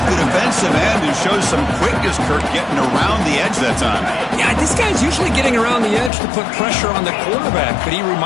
the defensive end, who shows some quickness, Kirk, getting around the edge that time. Yeah, this guy's usually getting around the edge to put pressure on the quarterback, but he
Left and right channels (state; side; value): drops out; right; at 6.1 s